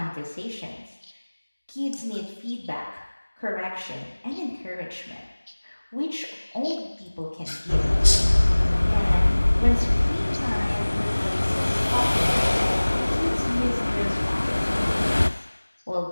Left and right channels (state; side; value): inverted; both; correlation -1.00